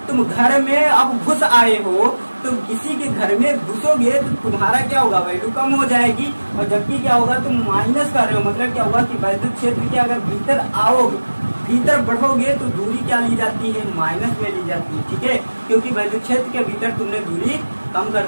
तुम घर में अब घुस आए हो, तुम किसी के घर में घुसोगे तो तुम्हारा क्या होगा, वैल्यू कम हो जाएगी, और जबकि क्या होगा तुम माइनस कर रहे हो, मतलब क्या होगा कि वैद्युत क्षेत्र के अगर भीतर आओगे, भीतर बढ़ोगे तो दूरी क्या ली जाती है, माइनस में ली जाती है, ठीक है, क्योंकि वैद्युत क्षेत्र के भीतर तुमने दूरी कम कर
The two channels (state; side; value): inverted; both; correlation -1.00